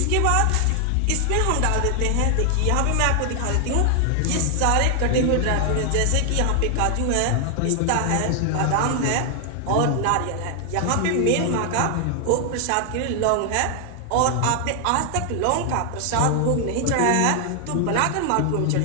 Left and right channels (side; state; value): both; different; correlation 0.00